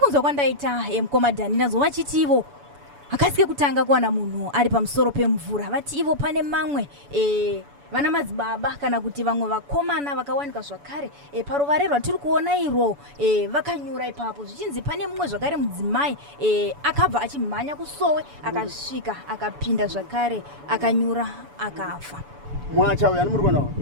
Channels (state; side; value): late; left; 7.0 ms